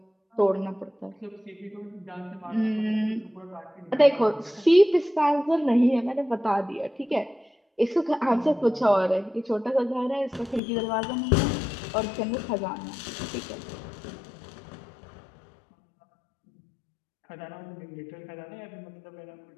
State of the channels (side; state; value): right; drops out; at 10.6 s